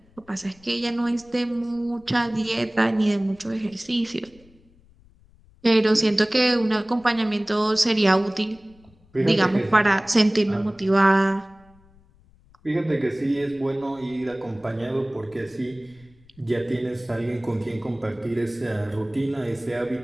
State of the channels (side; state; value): left; noise; rumble, 29 dB below the sound